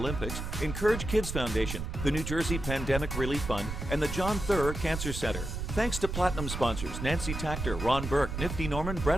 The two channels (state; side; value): noise; right; rumble, 5 dB below the sound